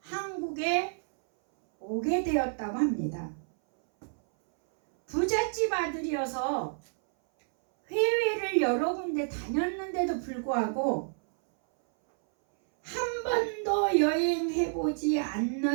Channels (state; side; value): silent; left; 58 dB below the other